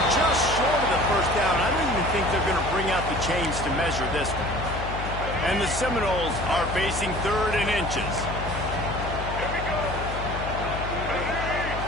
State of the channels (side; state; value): left; noise; hum, 6 dB below the sound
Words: just short of the 1st down. I don't even think they're going to bring out the chains to measure this one. And the Seminoles are facing 3rd and inches.